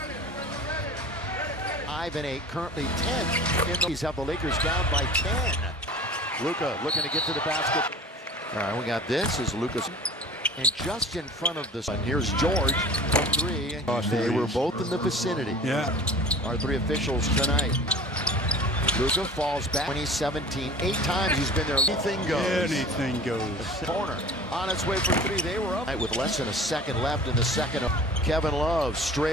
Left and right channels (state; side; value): normal; both; correlation 0.41